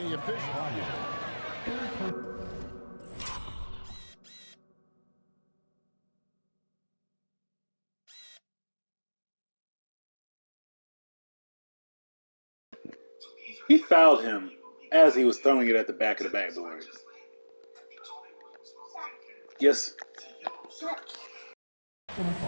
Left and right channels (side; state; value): both; inverted; correlation -1.00